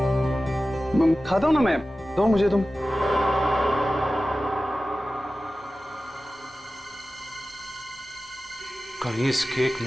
खाता हूं ना मैं, दो मुझे तुम। कहीं इस केक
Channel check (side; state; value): both; normal; correlation 0.95